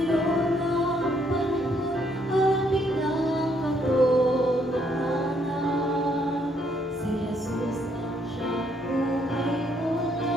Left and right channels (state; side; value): normal; both; correlation 0.70